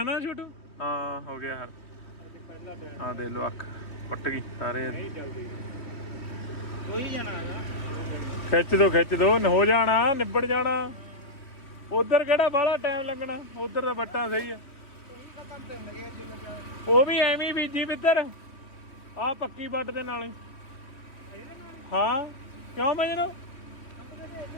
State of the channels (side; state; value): right; late; 3.1 ms